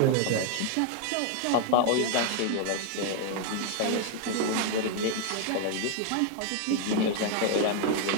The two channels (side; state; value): both; different; correlation 0.00